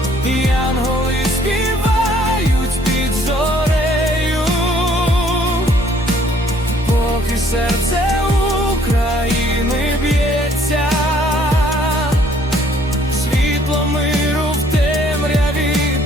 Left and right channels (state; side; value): normal; both; correlation 0.62